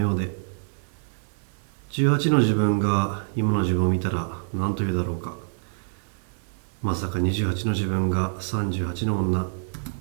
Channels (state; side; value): silent; left; digital silence